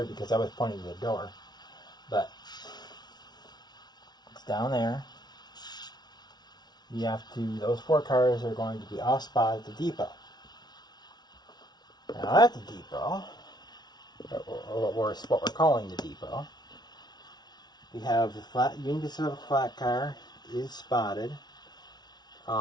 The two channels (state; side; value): late; right; 0.20 ms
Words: because I was pointing to the door, but it's down there. You have to, those 4 cars are going to be off spot at the depot. Now at the depot, or what we're calling the depot, we have the Union Pacific flat car is spotted.